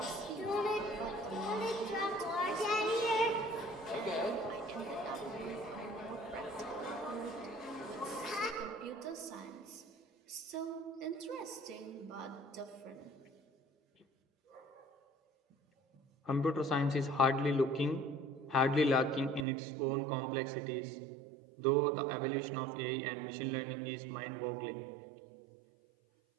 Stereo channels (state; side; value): drops out; left; at 19.5 s